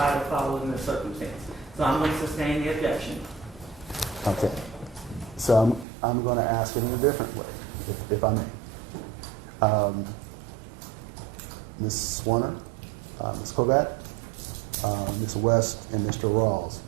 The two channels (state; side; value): drops out; left; at 5.9 s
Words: or followed in the circumstance. So I'm going to sustain the objection. Okay. So I'm going to ask it in a different way, if I may. Ms. Zwerner, Ms. Kovac, Ms. West, and Mr. Rawls,